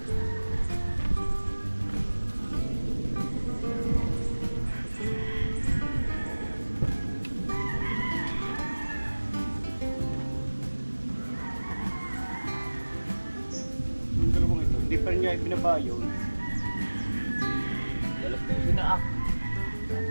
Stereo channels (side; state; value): both; inverted; correlation -1.00